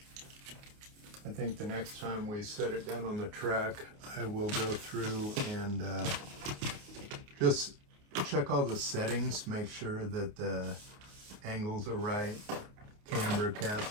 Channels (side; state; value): left; late; 29 ms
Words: I think the next time we set it down on the track, I will go through and just check all the settings, make sure that the angles are right, camber,